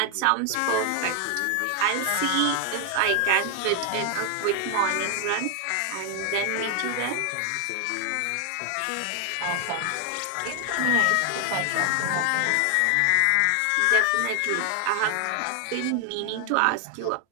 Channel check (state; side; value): different; both; correlation 0.00